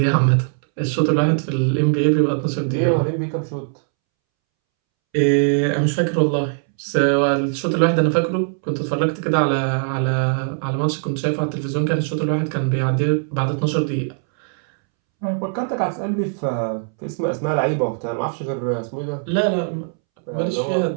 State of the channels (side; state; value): left; silent; 65 dB below the other